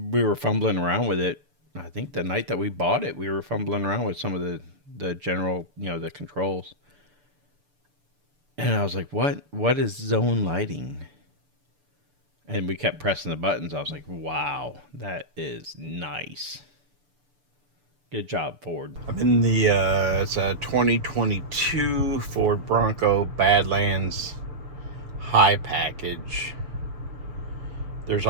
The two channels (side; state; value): left; late; 6.9 ms